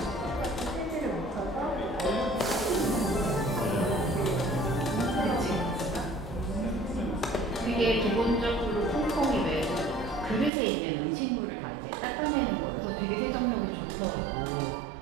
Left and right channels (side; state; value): left; drops out; at 10.5 s